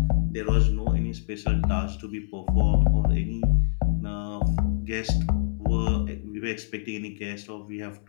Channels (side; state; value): right; silent; 60 dB below the other